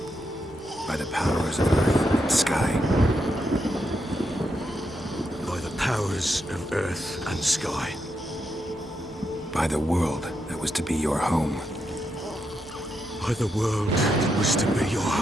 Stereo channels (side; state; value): both; normal; correlation 0.83